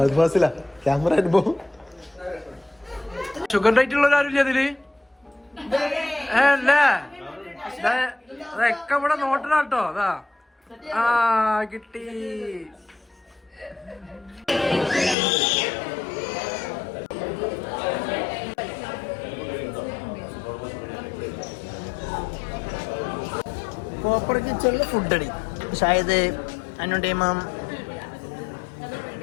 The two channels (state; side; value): drops out; right; at 15.2 s